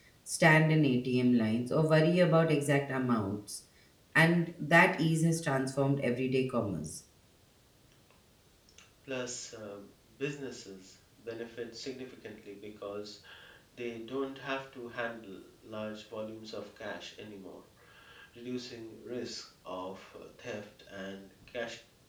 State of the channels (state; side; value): identical; both; correlation 1.00